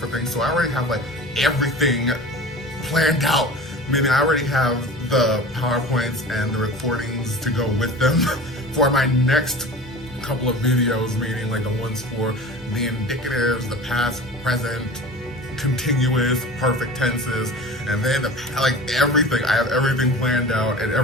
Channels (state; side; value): normal; both; correlation 0.36